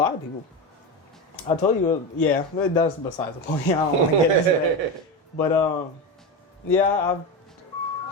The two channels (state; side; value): normal; both; correlation 0.19